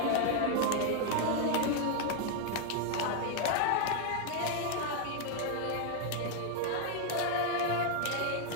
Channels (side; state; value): both; different; correlation 0.00